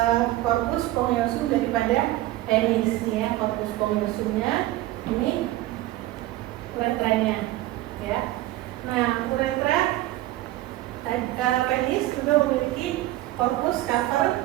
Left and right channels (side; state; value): left; quieter; 16.3 dB